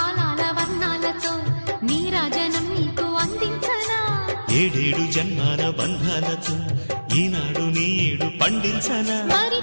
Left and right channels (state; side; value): inverted; both; correlation -1.00